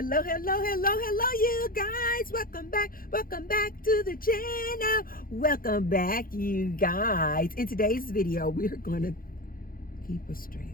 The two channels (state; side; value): late; right; 0.41 ms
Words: guys. Welcome back to the channel. Welcome back, you guys. In today's video, we're going to keep a